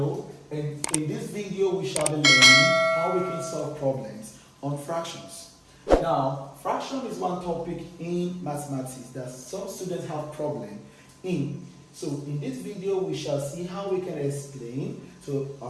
in this video, we shall be learning how we can solve problems on fractions. Now, fraction is one topic in mathematics that some students have problem in. So, in this video, we shall see how we can explain to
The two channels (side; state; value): both; identical; correlation 1.00